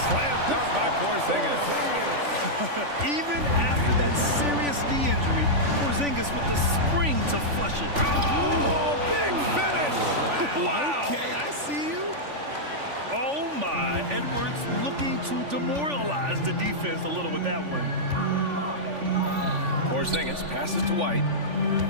slam dunk by Porzingis. Even after that serious knee injury, Porzingis with the spring to flush it. Oh, big finish! Wow! Okay, I see you. Oh my, Edwards looking to demoralize the defense a little with that one. Porzingis passes to White.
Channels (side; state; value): left; late; 3.5 ms